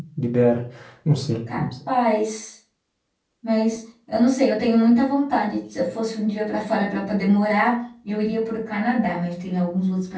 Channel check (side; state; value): both; identical; correlation 1.00